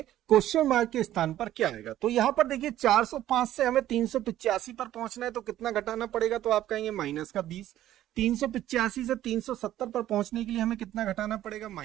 क्वेश्चन मार्क के स्थान पर क्या आएगा। तो यहाँ पर देखिए 405 से हमें 385 पर पहुंचना है, तो कितना घटाना पड़ेगा, तो आप कहेंगे -20। 385 से 370 पर पहुंचने के लिए हमें कितना घटाना पड़ेगा,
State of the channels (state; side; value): quieter; left; 13.0 dB